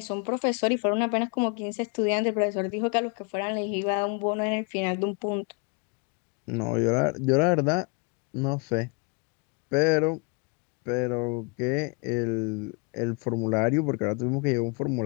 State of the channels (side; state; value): right; quieter; 31.5 dB